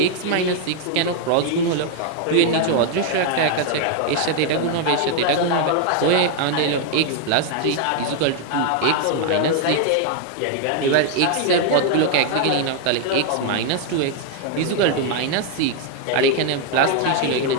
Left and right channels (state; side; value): different; both; correlation 0.00